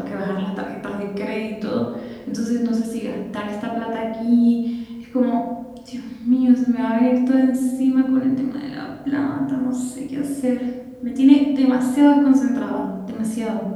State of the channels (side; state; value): both; identical; correlation 1.00